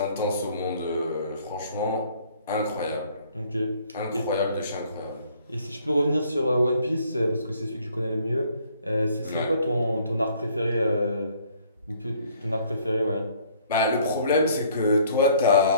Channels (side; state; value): both; inverted; correlation -0.60